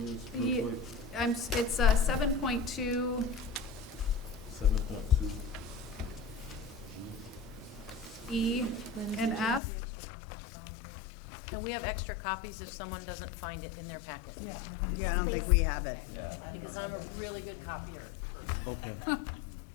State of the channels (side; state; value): right; drops out; at 9.6 s